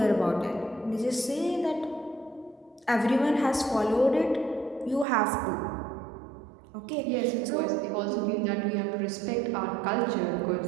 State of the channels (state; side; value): drops out; left; at 5.1 s